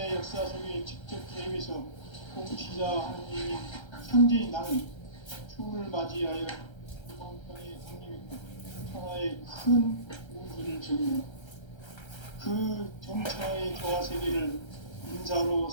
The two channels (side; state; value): right; late; 1.3 ms